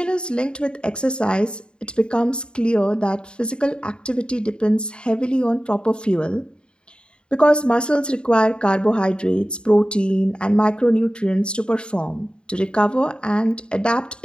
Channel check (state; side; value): late; right; 0.051 ms